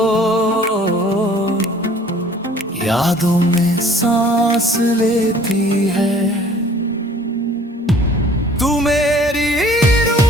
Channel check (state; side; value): normal; both; correlation 0.53